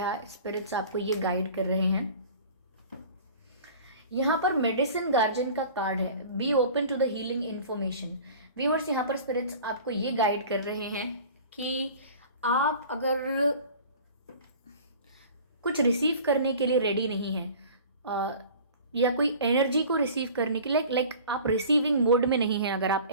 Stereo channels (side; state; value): both; inverted; correlation -0.43